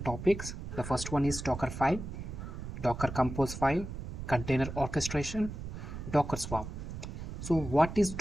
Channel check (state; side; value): noise; right; rumble, 8 dB below the sound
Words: topics. The first one is Dockerfile, Dockercompose file, container orchestration, Docker Swarm. So what is